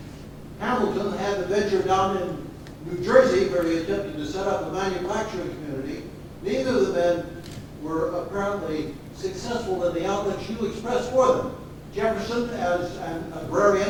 Hamilton had the venture down in New Jersey where he attempted to set up a manufacturing community. Neither of the men were apparently successful in the outlooks you expressed for them. Jefferson as an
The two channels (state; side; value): identical; both; correlation 1.00